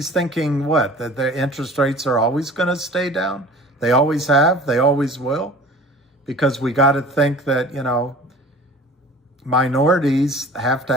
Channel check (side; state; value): both; normal; correlation 0.44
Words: thinking what? That the interest rates are always going to stay down? They always have, they always will? Because we got to think that, you know, minorities have